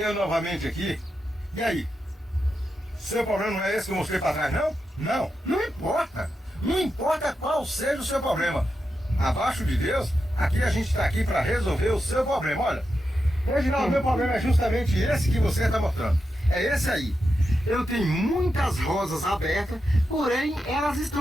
novamente aqui. E aí? Seu problema não é esse que eu mostrei pra trás, não? Não importa. Não importa qual seja o seu problema. Abaixo de Deus, aqui a gente está aqui para resolver o seu problema. Olha, Reginaldo, meu problema é justamente esse que você está mostrando. É esse aí. Eu tenho muitas rosas abertas, porém elas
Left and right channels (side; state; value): both; normal; correlation 0.88